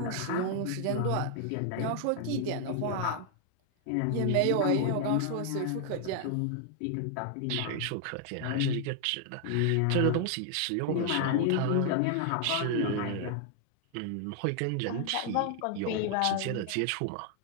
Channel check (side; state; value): both; different; correlation 0.00